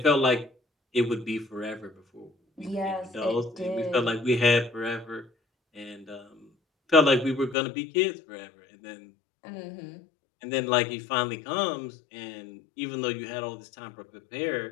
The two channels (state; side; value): drops out; right; at 7.6 s